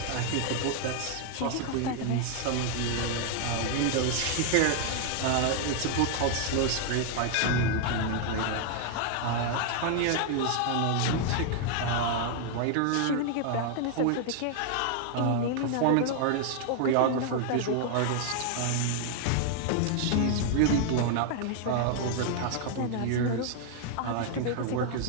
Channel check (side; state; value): both; different; correlation 0.00